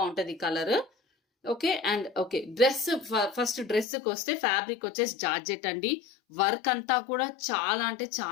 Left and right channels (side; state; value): right; drops out; at 3.9 s